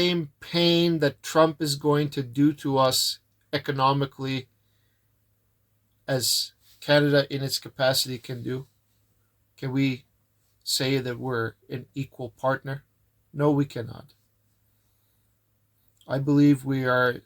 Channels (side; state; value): both; identical; correlation 1.00